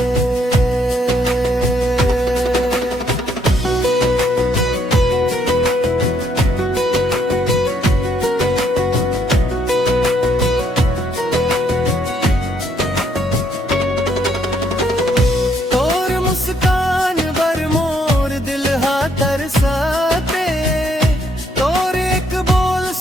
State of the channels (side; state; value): both; normal; correlation 0.70